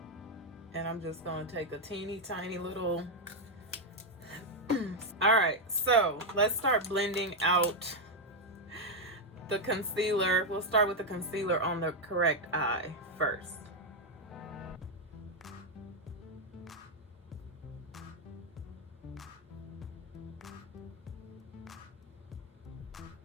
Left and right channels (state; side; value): normal; both; correlation 0.02